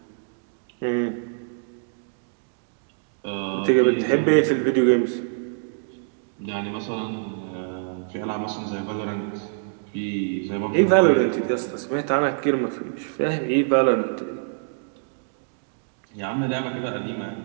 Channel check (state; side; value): silent; left; digital silence